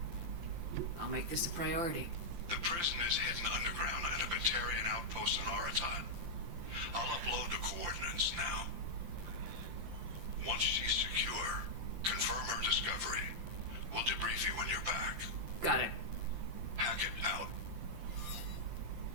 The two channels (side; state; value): left; late; 5.8 ms